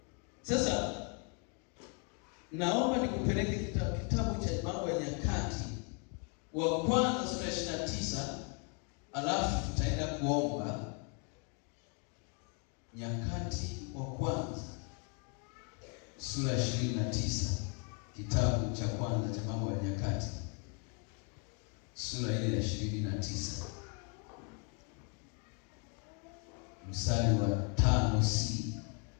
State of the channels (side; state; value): right; quieter; 37.5 dB